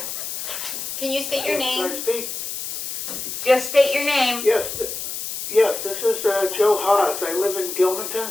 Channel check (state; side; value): noise; left; hiss, 6 dB below the sound